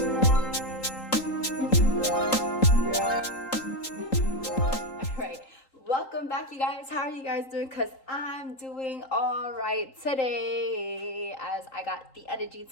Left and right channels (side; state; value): right; late; 3.8 ms